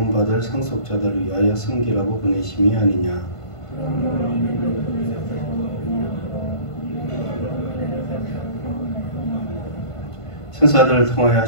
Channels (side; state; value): right; late; 1.5 ms